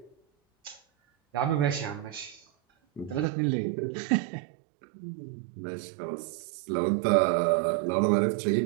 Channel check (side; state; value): left; drops out; at 3.2 s